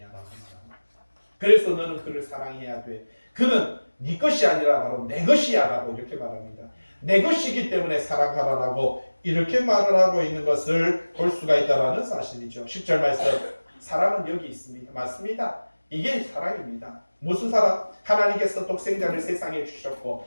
라고 말합니다. 그래서 너는 그를 사랑해야 돼. 그는 네 것이 아니라 바로 내 것이야 라고 이렇게 말합니다. 내 것이기 때문에 사랑하라라고 이렇게 말을 하고 있는 것을 볼 수가 있다는 사실이죠. 10절 말씀, 사랑은 여기 있습니다. 맞습니다. 이게 사랑입니다. 무슨 사랑? 하나님께서 독생자를 세상에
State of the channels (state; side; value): inverted; both; correlation -1.00